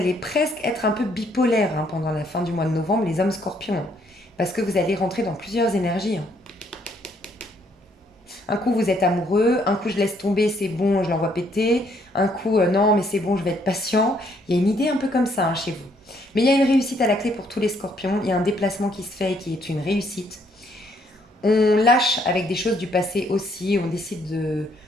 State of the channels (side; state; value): both; normal; correlation 0.68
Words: presque être un peu bipolaire, hein, pendant la fin du mois de novembre, les hommes scorpions, hein. Parce que vous allez rentrer dans plusieurs énergies, hein. Un coup, vous êtes amoureux. Un coup, je laisse tomber, c'est bon, je l'envoie péter. Un coup, non, mais c'est bon, je vais être patient. Il y a une idée un peu comme ça, hein, chez vous. Mais il y a une réussite à la clé pour tous les scorpions. Il y a un déplacement qui se fait et qui est une réussite. On lâche avec des choses du passé aussi. On décide